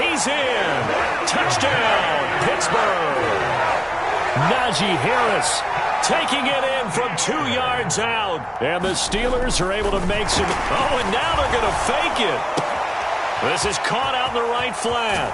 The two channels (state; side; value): identical; both; correlation 1.00